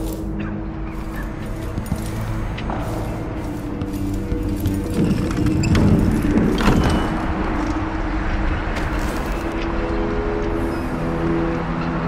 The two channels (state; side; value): identical; both; correlation 1.00